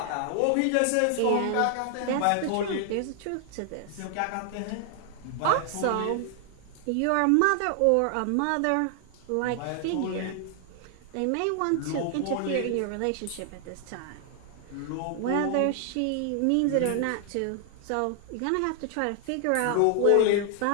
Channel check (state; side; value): different; both; correlation 0.00